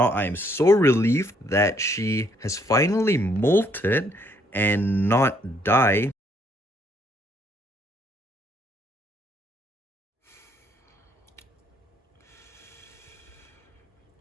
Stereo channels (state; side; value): normal; both; correlation 0.69